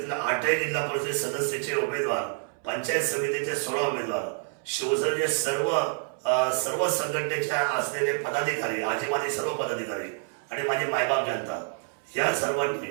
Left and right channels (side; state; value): left; silent; 60 dB below the other